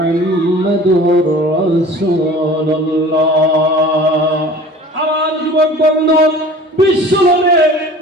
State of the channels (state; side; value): normal; both; correlation 0.44